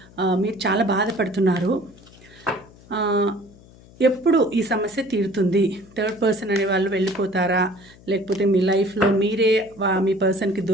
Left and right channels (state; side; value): noise; left; hum, 24 dB below the sound